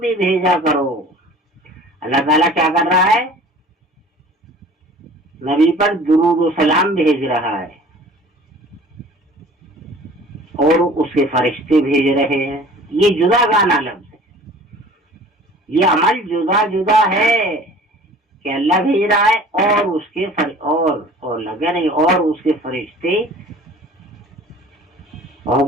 بھیجا کرو. اللہ تعالیٰ کیا کر رہا ہے؟ نبی پر درود و سلام بھیج رہا ہے اور اس کے فرشتے بھیج رہے ہیں. یہ جدا گانا لفظ ہے، یہ عمل جدا جدا ہے کہ اللہ بھیج رہا ہے اور اس کے اور لگے نہیں اور اس کے فرشتے.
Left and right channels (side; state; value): both; normal; correlation 0.46